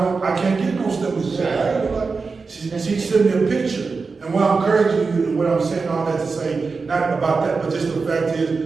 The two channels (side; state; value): left; quieter; 4.5 dB